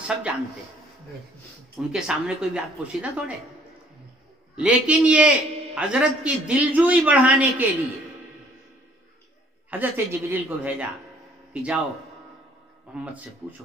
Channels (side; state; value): both; normal; correlation 0.60